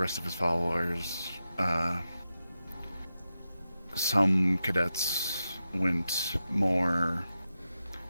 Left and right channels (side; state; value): both; inverted; correlation -0.90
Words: of his followers. Some cadets went more